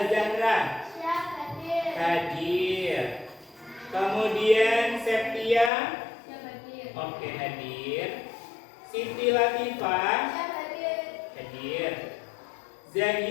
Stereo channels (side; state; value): right; drops out; at 5.7 s